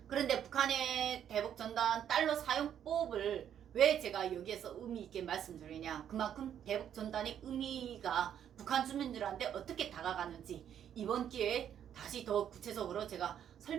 그런데 북한의 대북전단 달러 사용법을 왜 제가 여기에서 의미 있게 말씀드리냐, 그만큼 대북전단의 의미가 북한 주민들한테 어떻게 다가가는지 이번 기회에 다시 더 구체적으로 제가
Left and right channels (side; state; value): left; quieter; 9.6 dB